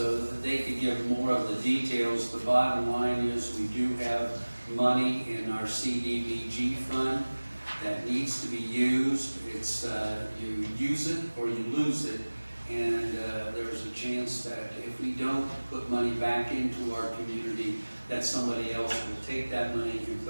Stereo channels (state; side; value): inverted; both; correlation -1.00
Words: that they could give more of the details. The bottom line is we do have money in our CDBG fund that needs to be used. It's you use it or you lose it, and there's a chance that if we don't put money back into our community, that somebody else will take that money and